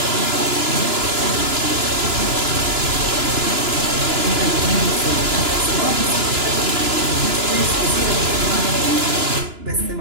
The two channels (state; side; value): late; left; 2.9 ms